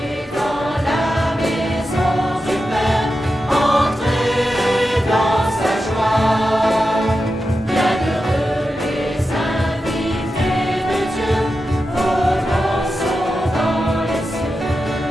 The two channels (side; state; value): both; normal; correlation 0.90